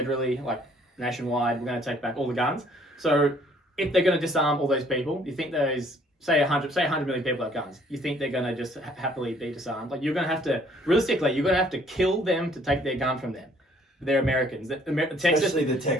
like nationwide, we're going to take back all the guns. So if they're going to disarm all those people, you think those, say 100 million people have guns, you think they're going to just happily be disarmed? Like you're going to have to, realistically, you're going to have to kill them to take their gun from them. They're Americans. Texas, especially the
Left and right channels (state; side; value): normal; both; correlation 0.61